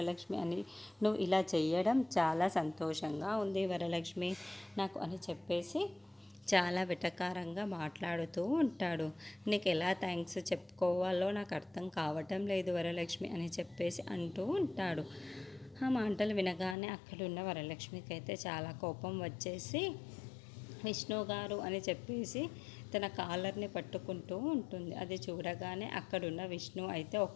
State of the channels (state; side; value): drops out; right; at 16.8 s